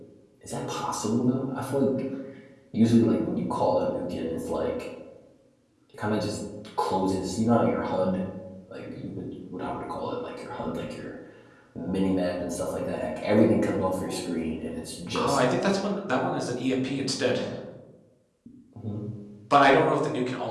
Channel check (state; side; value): identical; both; correlation 1.00